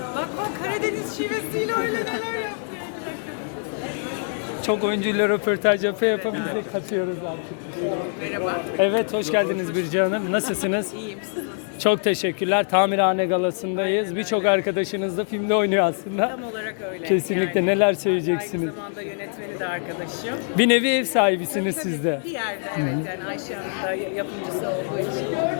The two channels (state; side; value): silent; right; 59 dB below the other